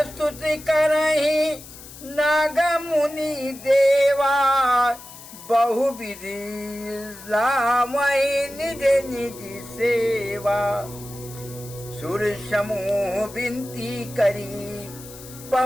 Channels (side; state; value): left; noise; hiss, 17 dB below the sound